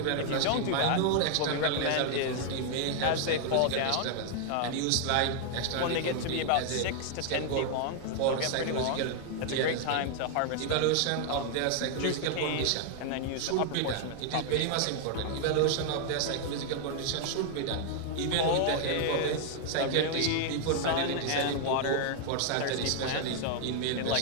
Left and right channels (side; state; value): both; different; correlation 0.00